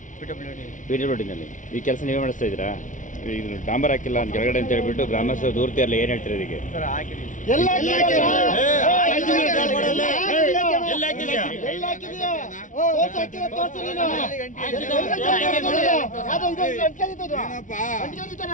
ಪಿಡಬ್ಲ್ಯೂಡಿನಲ್ಲಿ ಈ ಕೆಲಸ ನೀವೇ ಮಾಡಿಸ್ತಾ ಇದ್ದೀರಾ? ಇದು ಡಾಂಬರ್ ಹಾಕಿಲ್ಲ ಅಂತ ಕೆಳಗಡೆ ಅಂತ ಹೇಳ್ಬಿಟ್ಟು ಗ್ರಾಮಸ್ಥರು ದೂರ್ತಿ ಅಲ್ಲ, ಏನು ಹೇಳ್ತೀರಾ ಇದಕ್ಕೆ?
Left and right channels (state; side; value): late; right; 0.37 ms